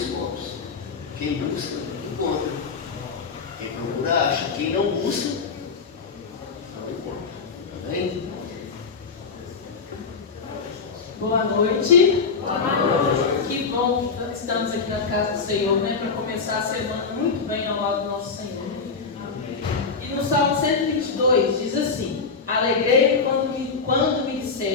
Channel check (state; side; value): quieter; right; 4.9 dB